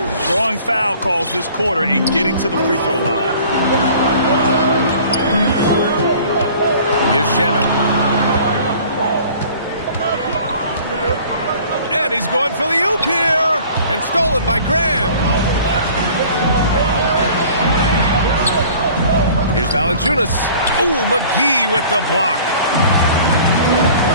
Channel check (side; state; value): both; inverted; correlation -0.48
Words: Drawing foul calls this quarter and getting to the free throw line. Here's Shaman. And he's going for the oop here. And stolen by Graham. Here's Valanciunas. Ooh, McGee with the block.